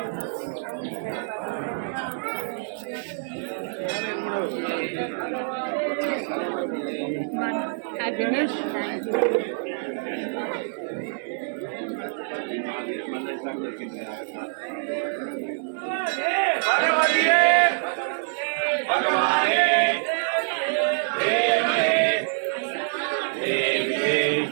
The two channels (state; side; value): silent; left; 61 dB below the other